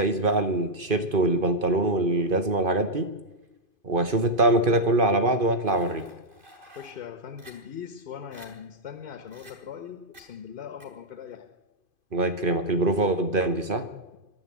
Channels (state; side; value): late; left; 2.5 ms